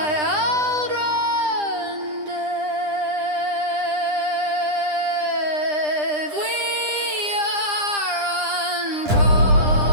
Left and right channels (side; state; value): left; late; 9.9 ms